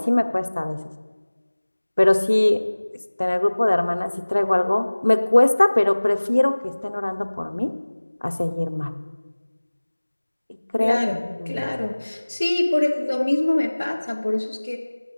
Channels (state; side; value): inverted; both; correlation -1.00